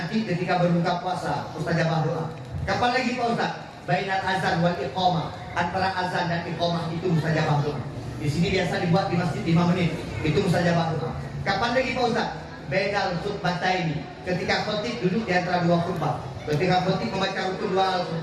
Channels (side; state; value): both; identical; correlation 1.00